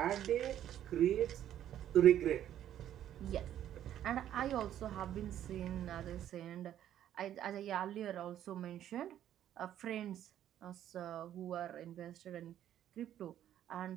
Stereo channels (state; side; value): quieter; left; 11.2 dB